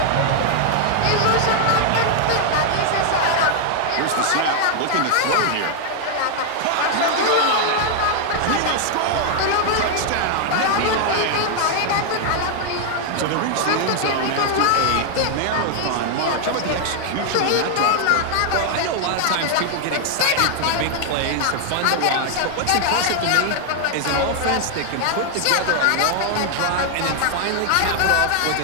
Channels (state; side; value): different; both; correlation 0.00